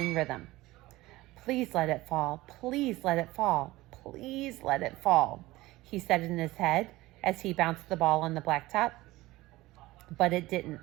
rhythm. "Please let it fall. Please let it fall. Please let it fall," he said in his head as he bounced the ball on the blacktop. But it didn't.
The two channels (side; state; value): left; quieter; 18.6 dB